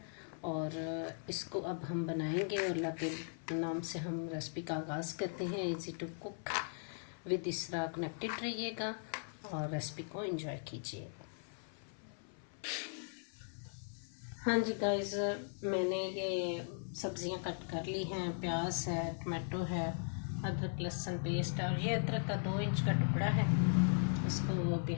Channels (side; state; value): right; silent; 52 dB below the other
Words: और इसको अब हम बनाएंगे। और अल्लाह के नाम से हम रेसिपी का आगाज़ करते हैं। इजी टू कुक विद इसरा कनेक्टेड रहिएगा और रेसिपी को एंजॉय कीजिए। हाँ जी गाइस, मैंने ये सब्ज़ियां कट कर ली हैं। प्याज है, टमाटो है, अदरक लहसुन पेस्ट है और ये अदरक का 2 इंच का टुकड़ा है। इसको अभी